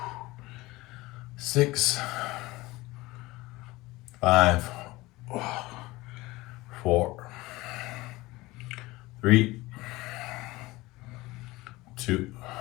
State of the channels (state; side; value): quieter; right; 20.3 dB